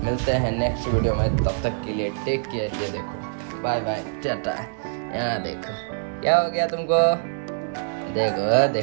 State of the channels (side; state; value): left; silent; 62 dB below the other